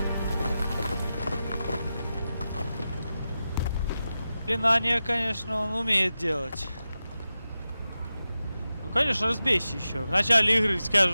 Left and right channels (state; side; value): inverted; both; correlation -0.92